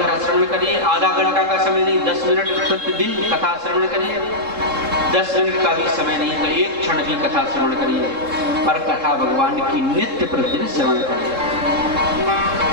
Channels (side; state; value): left; late; 3.7 ms